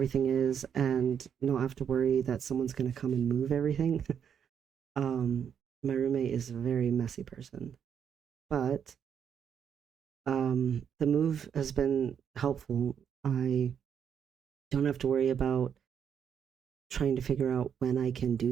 is and not have to worry that someone's going to come and move everything. um my roommate is a very messy person, but the move has been helpful. I don't have to worry about trying to figure out when I can do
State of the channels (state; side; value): quieter; left; 8.0 dB